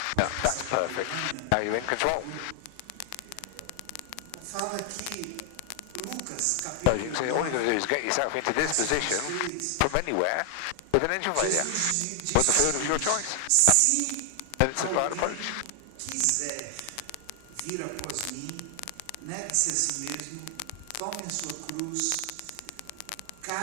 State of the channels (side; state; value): both; different; correlation 0.00